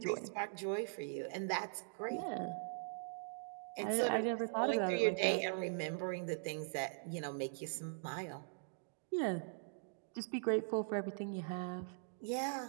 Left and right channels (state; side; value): silent; left; digital silence